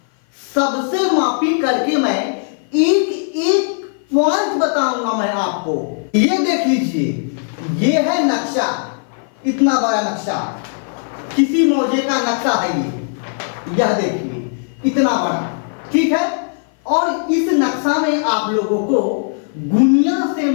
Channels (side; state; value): right; silent; 55 dB below the other